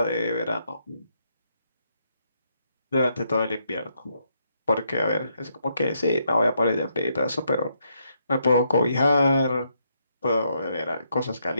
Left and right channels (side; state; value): both; inverted; correlation -0.77